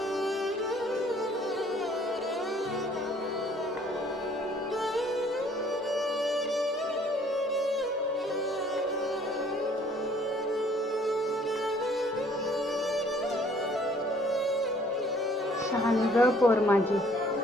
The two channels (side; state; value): both; normal; correlation 0.59